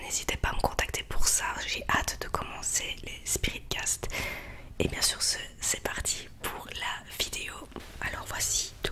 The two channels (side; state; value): both; identical; correlation 1.00